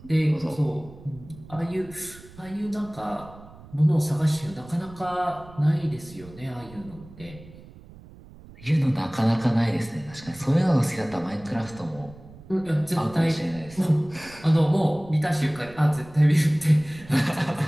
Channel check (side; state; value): right; noise; rumble, 20 dB below the sound